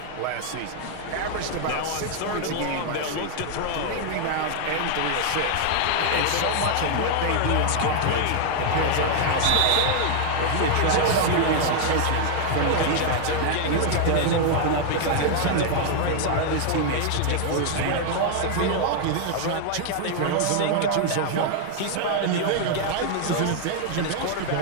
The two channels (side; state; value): both; different; correlation 0.00